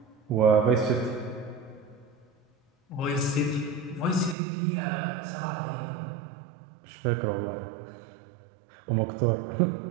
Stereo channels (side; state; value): left; drops out; at 4.4 s